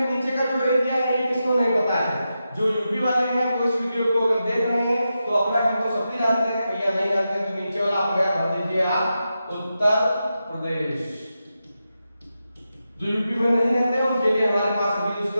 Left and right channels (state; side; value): inverted; both; correlation -0.89